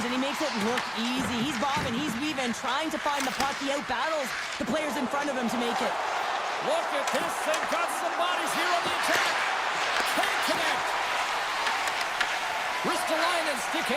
and he makes it look easy. He's bobbing, he's weaving, trying to find the puck. He out-battles the players in front of him to make it. Look at this. They've got some bodies here on the attack. Can't connect. Ristolainen stick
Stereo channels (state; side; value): identical; both; correlation 1.00